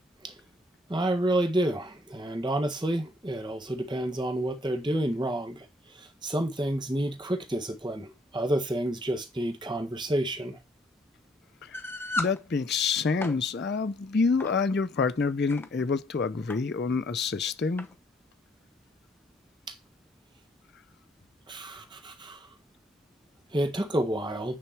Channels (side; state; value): both; normal; correlation 0.67